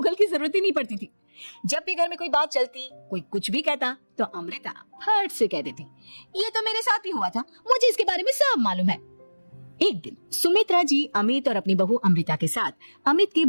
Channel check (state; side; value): inverted; both; correlation -1.00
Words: की जरूरत ही नहीं पड़ती थी। जब भी घर में कोई बात चलती, कोई कुछ भी कहता, तो अमृता फट से कह देती, ये तो मेरे साथ भी हुआ था, मुझे इसके बारे में सब मालूम है। एक दिन सुमित्रा जी अमित और अपनी बहू अमृता के साथ अमित के